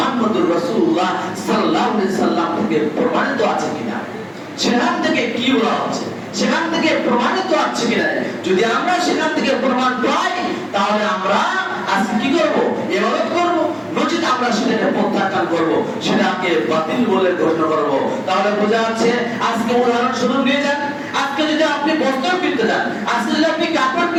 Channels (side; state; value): both; identical; correlation 1.00